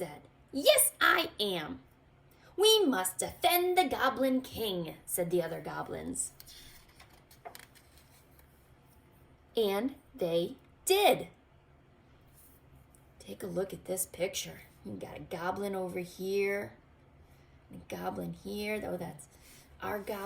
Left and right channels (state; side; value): identical; both; correlation 1.00